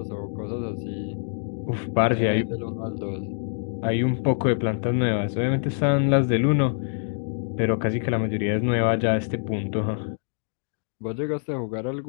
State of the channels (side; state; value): right; silent; digital silence